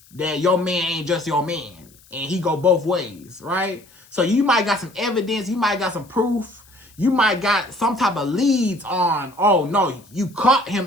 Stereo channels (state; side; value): noise; left; hiss, 27 dB below the sound